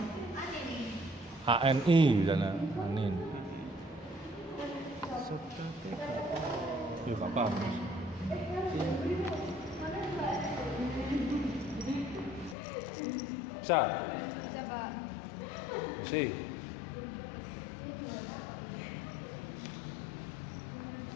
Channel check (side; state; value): right; drops out; at 12.6 s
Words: ANI dan Anin. Yuk apa? Bisa? Bisa Pak. Si.